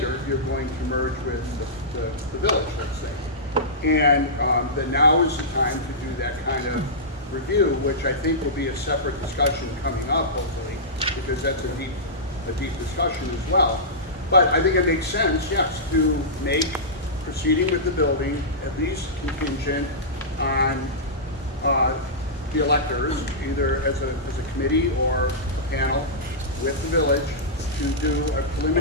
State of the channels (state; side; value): normal; both; correlation -0.16